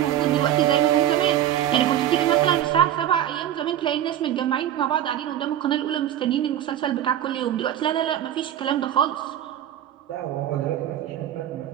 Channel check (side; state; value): left; quieter; 11.4 dB